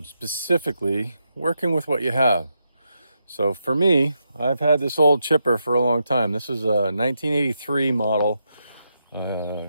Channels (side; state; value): both; inverted; correlation -0.83